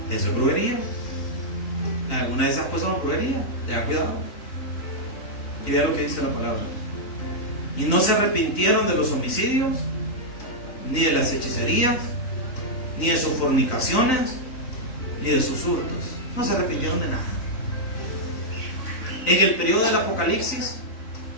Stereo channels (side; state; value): right; late; 3.9 ms